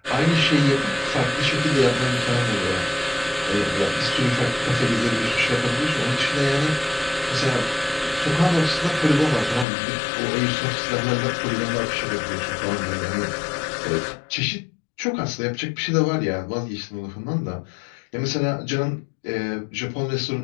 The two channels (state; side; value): drops out; right; at 9.7 s